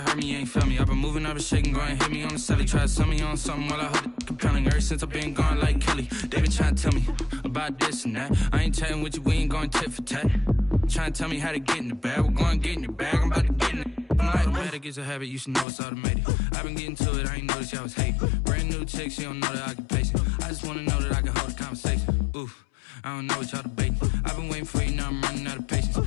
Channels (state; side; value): drops out; right; at 15.7 s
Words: heard me, you ain't felt me. I've been moving, I've been shaking, go and hit me on the celly. Try to sell me on something while I hold it compelling. Ever since I've been gone like Kelly. They been trying to tell me about this and that. I ain't chatting with you, we ain't going tit for tat. Trying to tell me how to get in the bag. We're going to get in your bag, I'm about to get in it. I'm like, automatic is a habit, you should know it's automated. I've been getting to it, I ain't noticed y'all was hating. Brand new chick, she don't know that I can pace it. I just wanna know that I can hold a conversation. Oof, I don't know what y'all debating. I've been waiting for you, now I'm running out of patience.